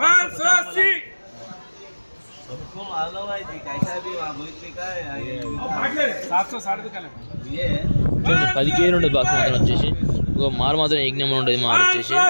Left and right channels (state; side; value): inverted; both; correlation -1.00